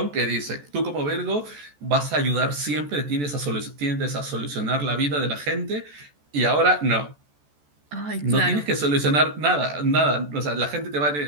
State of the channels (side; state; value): left; late; 14 ms